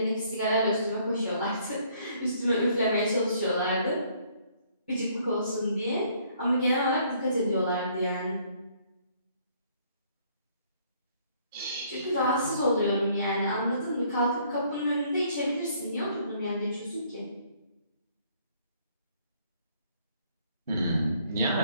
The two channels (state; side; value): inverted; both; correlation -0.63